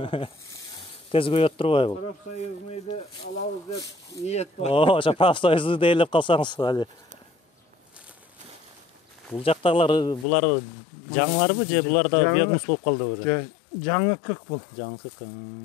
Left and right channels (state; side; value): drops out; right; at 10.2 s